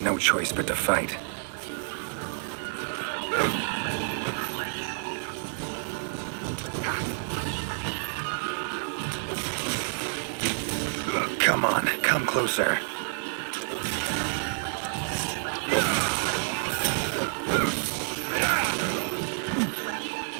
no choice but to fight. Come on, come closer.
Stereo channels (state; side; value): silent; left; 59 dB below the other